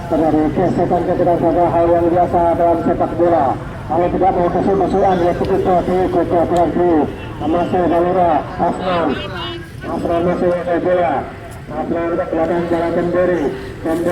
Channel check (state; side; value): identical; both; correlation 1.00